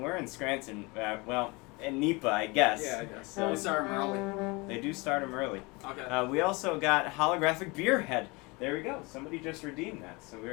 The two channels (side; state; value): right; quieter; 26.3 dB